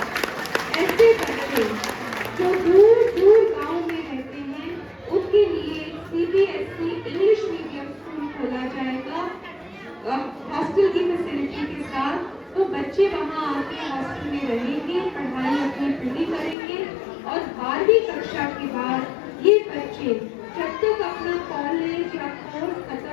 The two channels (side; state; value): right; drops out; at 16.6 s